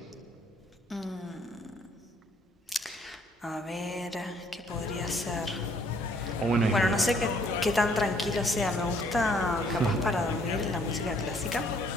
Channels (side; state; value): both; normal; correlation 0.64